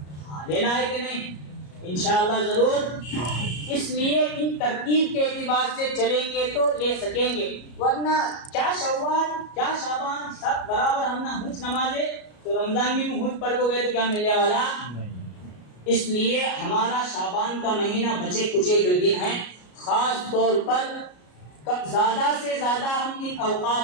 ہاں لینا ہے کہ نہیں انشاءاللہ ضرور. اس لیے ان ترتیب کے اعتبار سے چلیں گے تو لے سکیں گے ورنہ کیا شوال کیا شعبان سب برابر ہم نہ ہنچ نمازیں تو رمضان میں ہنچ پڑھ کو گئے تو کیا ملنے والا. اس لیے ہمارا شعبان کا مہینہ بچے کچے جو دن ہیں خاص طور پر زیادہ سے زیادہ ہم ان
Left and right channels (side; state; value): right; late; 33 ms